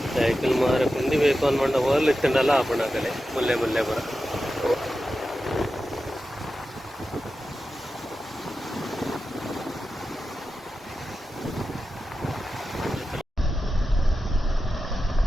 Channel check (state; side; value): normal; both; correlation 0.92